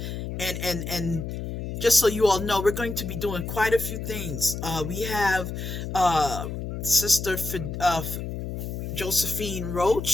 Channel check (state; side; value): noise; left; hum, 5 dB below the sound